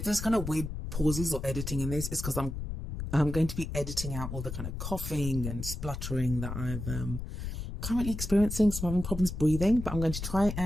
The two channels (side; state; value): left; noise; rumble, 6 dB below the sound